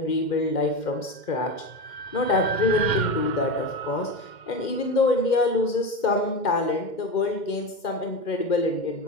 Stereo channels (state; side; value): late; right; 2.1 ms